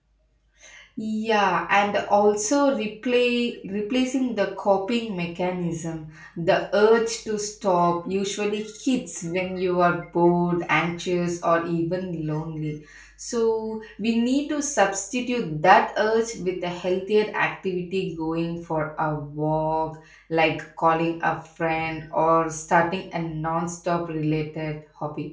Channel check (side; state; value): both; identical; correlation 1.00